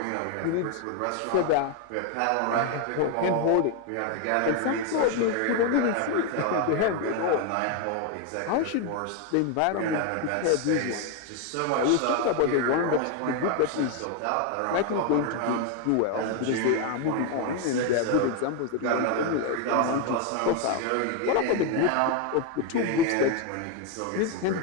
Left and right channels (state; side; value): different; both; correlation 0.01